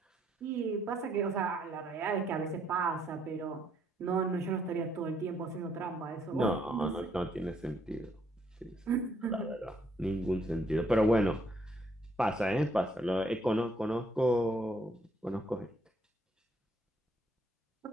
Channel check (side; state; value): both; normal; correlation 0.70